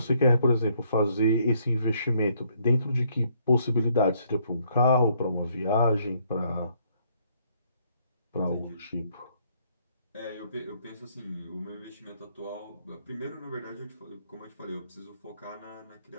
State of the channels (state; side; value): inverted; both; correlation -0.68